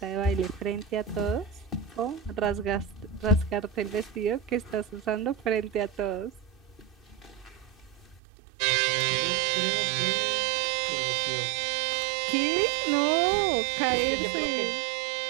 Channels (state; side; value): drops out; left; at 8.2 s